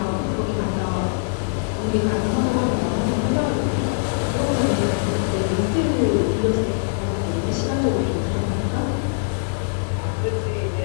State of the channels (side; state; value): right; silent; digital silence